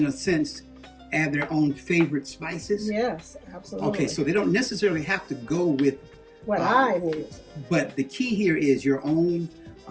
a sense, add their own favorite spices. Yes, absolutely. Okay, so they don't necessarily have to go with what I use. But the key here is your own,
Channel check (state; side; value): identical; both; correlation 1.00